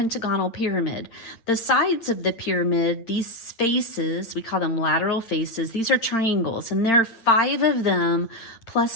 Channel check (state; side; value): late; right; 8.8 ms